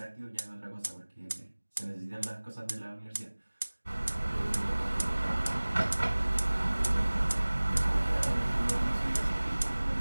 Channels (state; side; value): inverted; both; correlation -1.00